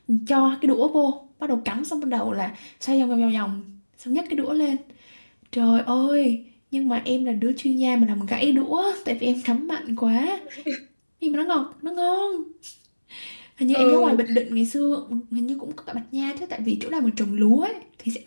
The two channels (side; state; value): both; inverted; correlation -1.00